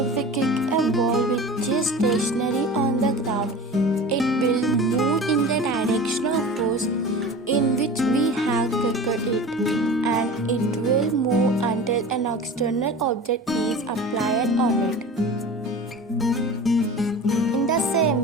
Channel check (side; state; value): both; normal; correlation 0.36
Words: we kick a ball which is stationary on the ground, it will move in the direction of force in which we have kicked it, and it will move until an external object is applied on it. In the same